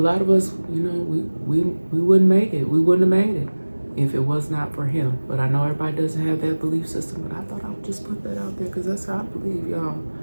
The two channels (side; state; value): both; inverted; correlation -1.00